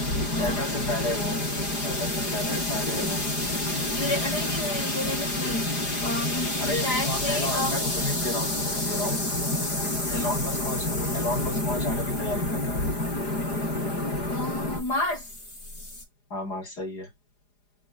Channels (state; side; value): late; right; 4.9 ms